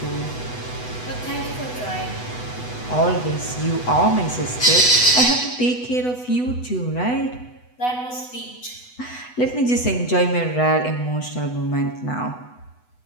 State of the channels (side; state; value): right; late; 8.1 ms